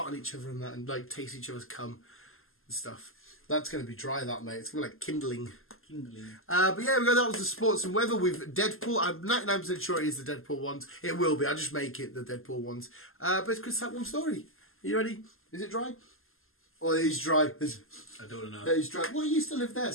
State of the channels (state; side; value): late; right; 0.61 ms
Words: on each other and that, and like taste each other's cum and stuff. That's going to be dry, that, mate. It's going to be like kindling. But yeah, that was the sports and weather with Deadpool. I'm 99% sure it is the Deadpool ones. It will be. I'll just make it the Deadpool ones. But it's Chris, that one story. Are you ready? Is it dry? Oh, it is dry. I don't know. It is dry. Well, it used to live there.